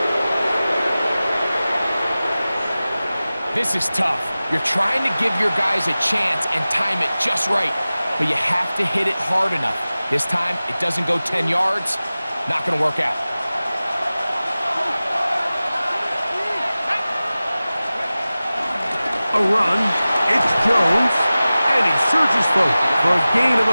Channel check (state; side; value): inverted; both; correlation -0.97